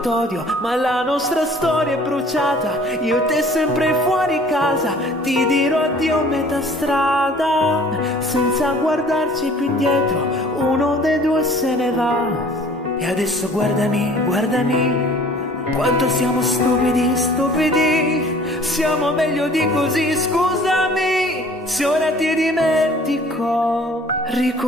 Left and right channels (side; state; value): both; normal; correlation 0.51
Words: t'odio, ma la nostra storia è bruciata. Io e te sempre fuori casa, ti dirò addio a metà strada. Senza guardarci più indietro, uno dei due se ne va. E adesso guardami, guardami, quanto siamo stupidi, stupidi. Siamo meglio di così, scusami se ora ti dimentico.